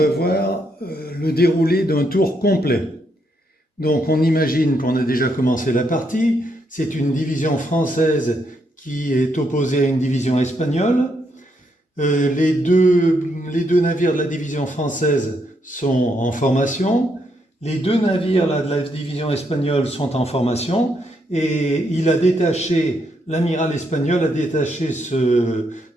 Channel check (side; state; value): both; normal; correlation 0.77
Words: voir le déroulé d'un tour complet. Donc on imagine qu'on a déjà commencé la partie. C'est une division française qui est opposée à une division espagnole. Les deux navires de la division française sont en formation. Les deux navires de la division espagnole sont en formation. Et l'amiral espagnol a détaché ce